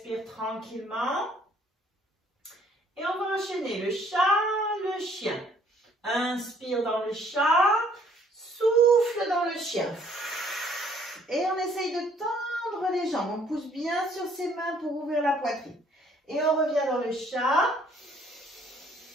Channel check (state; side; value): normal; both; correlation 0.62